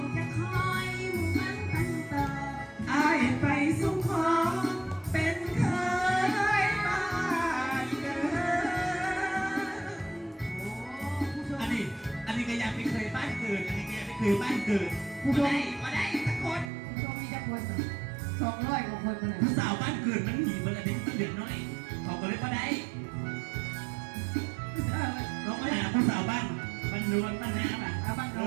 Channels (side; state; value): left; drops out; at 16.7 s